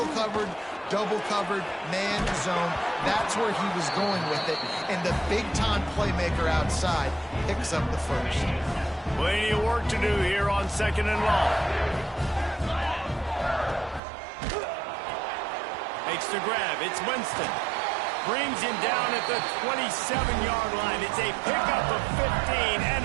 covered, double covered, man, zone. That's where he was going with it, and the big-time playmaker outside picks up the first. Plenty of work to do here on 2nd and long. Makes the grab. It's Winston. Brings him down at the 27-yard line. It's a pickup of 15 and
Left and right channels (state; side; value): drops out; left; at 14.0 s